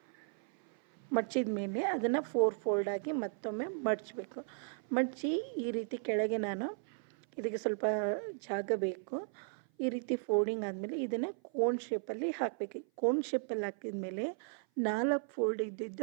ಮಡ್ಚಿದ ಮೇಲೆ ಅದನ್ನು 4 ಫೋಲ್ಡಾಗಿ ಮತ್ತೊಮ್ಮೆ ಮಡಚಬೇಕು. ಮಡಚಿ ಈ ರೀತಿ ಕೆಳಗೆ ನಾನು ಇದಕ್ಕೆ ಸ್ವಲ್ಪ ಜಾಗ ಬೇಕು. ಈ ರೀತಿ ಫೋಲ್ಡಿಂಗ್ ಆದಮೇಲೆ ಇದನ್ನು ಕೋನ್ ಶೇಪಲ್ಲಿ ಹಾಕಬೇಕು. ಕೋನ್ ಶೇಪಲ್ಲಿ ಹಾಕಿದ ಮೇಲೆ 4 ಫೋಲ್ಡ್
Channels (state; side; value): silent; left; 54 dB below the other